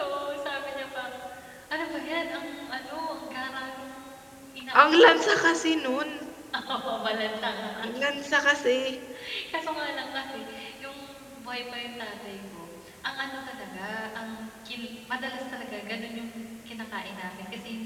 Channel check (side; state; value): both; identical; correlation 1.00